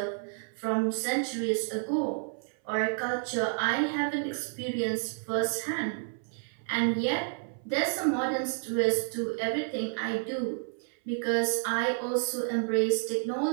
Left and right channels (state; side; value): silent; left; 58 dB below the other